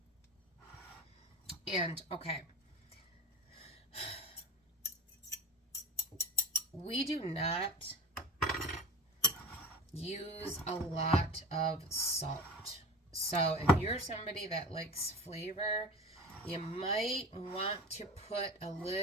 And, okay. We do not use a lot of salt. So if you're somebody that likes flavor, you might want to put a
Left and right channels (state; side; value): normal; both; correlation 0.33